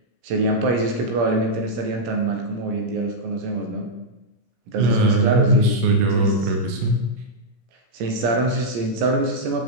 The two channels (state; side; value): late; left; 17 ms